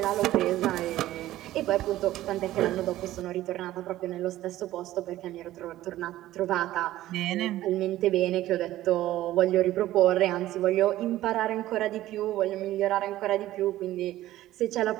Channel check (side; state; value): left; quieter; 14.8 dB